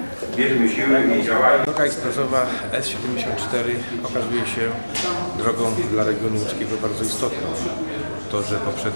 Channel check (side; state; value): both; inverted; correlation -1.00